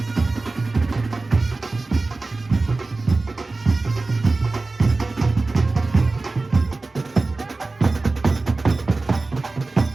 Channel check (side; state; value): left; quieter; 3.4 dB